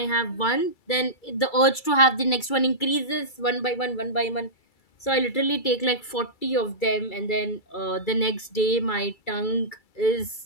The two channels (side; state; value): right; late; 2.3 ms